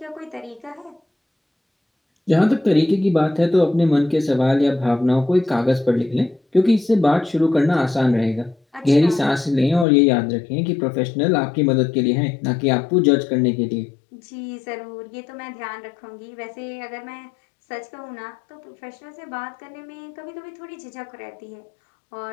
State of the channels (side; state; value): right; drops out; at 9.9 s